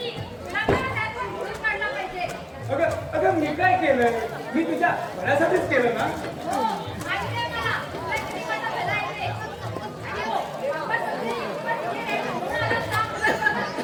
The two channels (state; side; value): identical; both; correlation 1.00